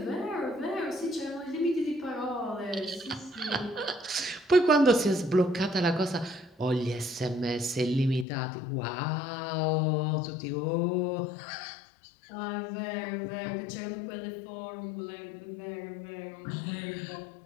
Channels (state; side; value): drops out; right; at 8.2 s